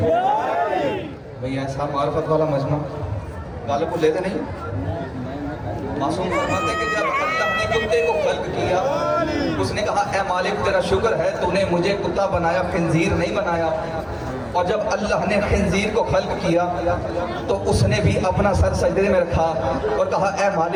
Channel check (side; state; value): both; identical; correlation 1.00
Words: भाई ऐसा मार्फत वाला मजमा गाले को लेते नहीं। मासूम फरमाते कि जब अल्लाह ने कुत्ते को खल्क किया, उसने कहा ए मालिक तेरा शुक्र है तूने मुझे कुत्ता बनाया, खिंजीर नहीं बनाया। और जब अल्लाह ने खिंजीर को खल्क किया तो उसने भी अपना सर सजदे में रखा और कहा ए